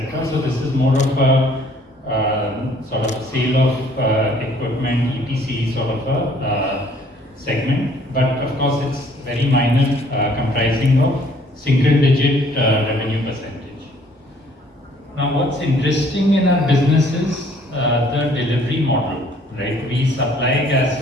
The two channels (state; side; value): normal; both; correlation 0.59